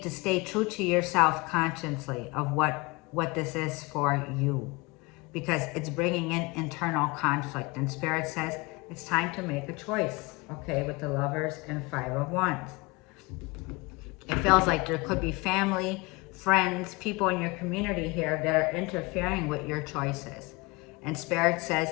to stay true to yourself consciously of what this is for you. Because it's bringing in internal conflict. And Spirit says it's time to make a choice, okay, with the Lovers and 5 of Wands. It feels like there could be family, friends, people in your community here that are interfering with your choices. And Spirit says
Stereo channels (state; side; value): quieter; right; 25.1 dB